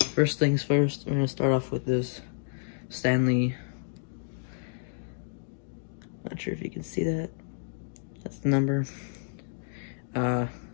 first things first, I'm going to start off with this Stanley. Not sure if you can see that. That's the number. I'm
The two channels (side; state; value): right; silent; digital silence